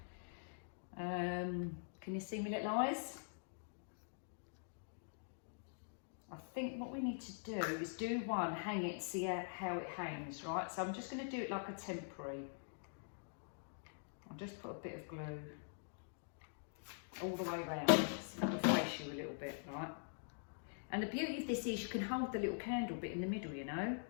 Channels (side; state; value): right; silent; digital silence